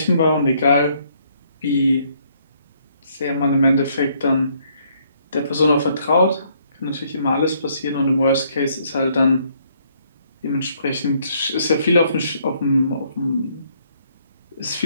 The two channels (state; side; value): inverted; both; correlation -0.68